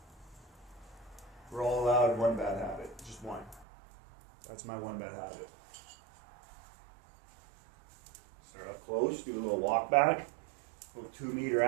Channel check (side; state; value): left; drops out; at 3.7 s